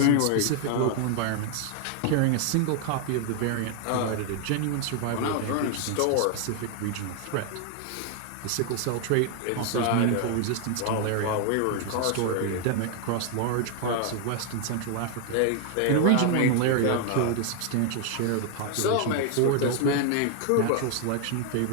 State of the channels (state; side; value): different; both; correlation 0.00